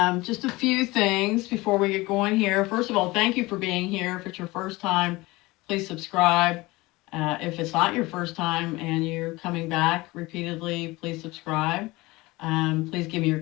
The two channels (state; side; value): quieter; right; 21.4 dB